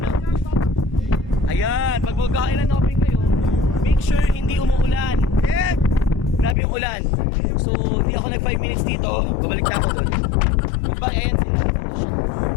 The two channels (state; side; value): drops out; right; at 6.6 s